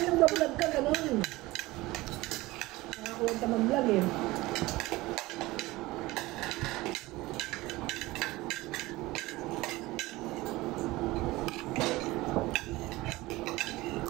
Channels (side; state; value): left; quieter; 19.8 dB